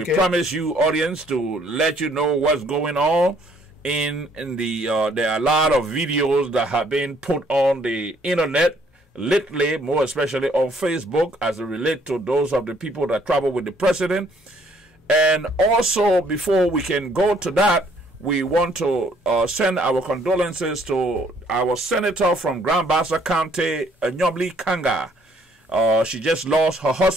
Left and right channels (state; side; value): normal; both; correlation 0.64